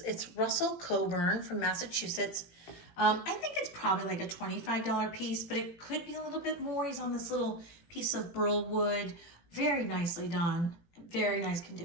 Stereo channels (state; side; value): late; right; 18 ms